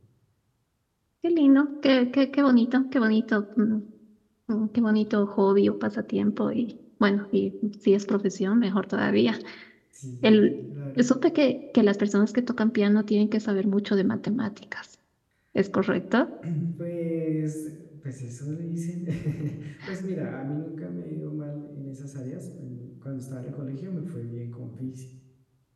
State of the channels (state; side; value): identical; both; correlation 1.00